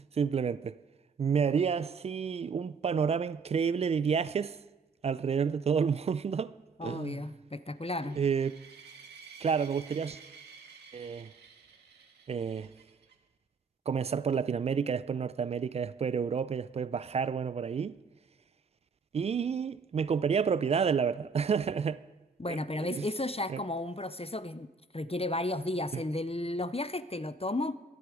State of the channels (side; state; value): left; quieter; 4.7 dB